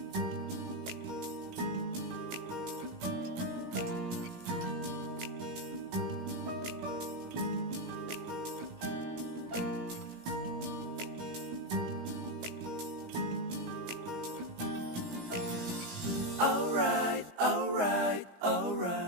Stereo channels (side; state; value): left; late; 17 ms